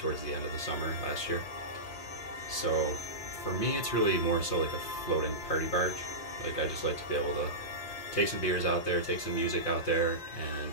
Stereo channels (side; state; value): right; late; 5.6 ms